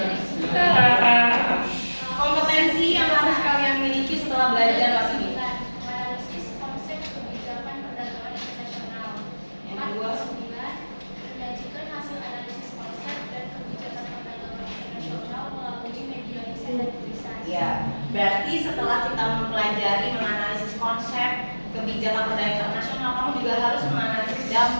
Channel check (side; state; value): both; inverted; correlation -1.00